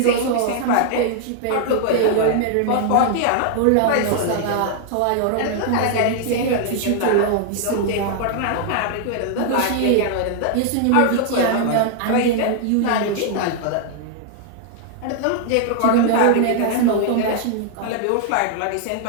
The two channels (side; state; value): both; different; correlation 0.00